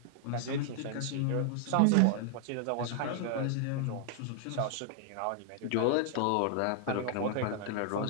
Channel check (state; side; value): different; both; correlation -0.01